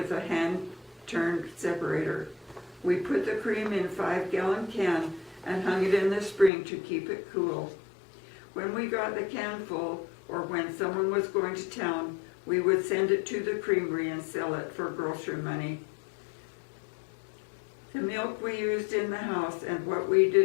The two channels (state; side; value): drops out; right; at 6.5 s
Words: a hand-turned separator. We put the cream in a 5-gallon can and hung it in the spring to keep it cool. When we got the can full, or when someone was going to town, we would send it to the creamery and sell it for grocery money. The milk we used in the house and what we